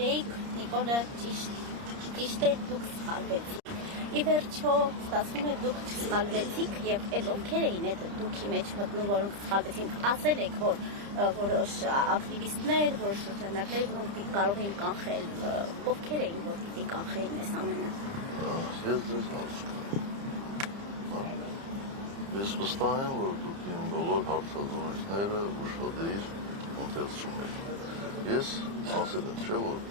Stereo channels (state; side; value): late; left; 30 ms